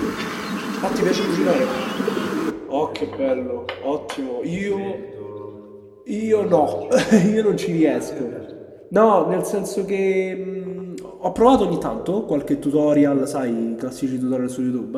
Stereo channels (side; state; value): both; identical; correlation 1.00